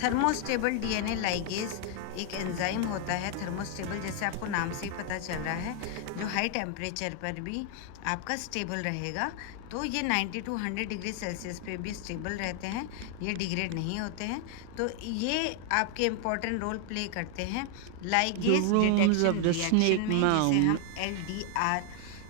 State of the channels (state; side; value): different; both; correlation 0.00